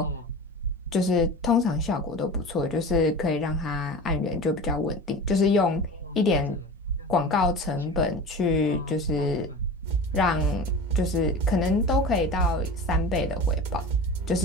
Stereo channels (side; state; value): both; normal; correlation 0.33